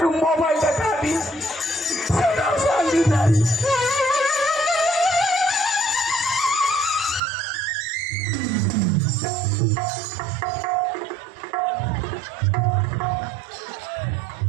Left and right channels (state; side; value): drops out; left; at 7.2 s